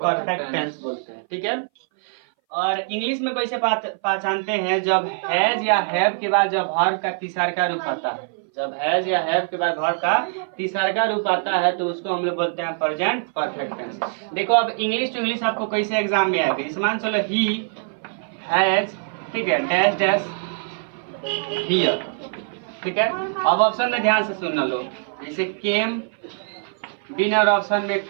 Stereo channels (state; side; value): silent; left; 60 dB below the other